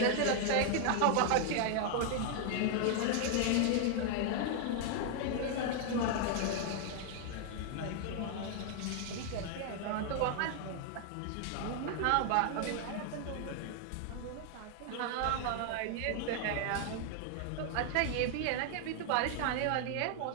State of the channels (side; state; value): both; different; correlation 0.00